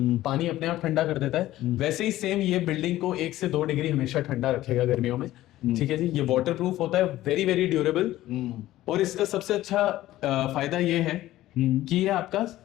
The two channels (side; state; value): right; quieter; 15.2 dB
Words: पानी अपने आप ठंडा कर देता है, वैसे ही सेम ये बिल्डिंग को 1 से 2 डिग्री हमेशा ठंडा रखेगा गर्मियों में। ठीक है जी, ये वाटर प्रूफ होता है, वेरी वेरी ड्यूरेबल, और इसका सबसे अच्छा फायदा ये है कि ये आपका